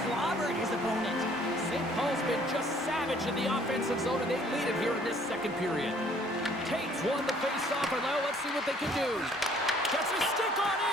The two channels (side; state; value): both; normal; correlation 0.59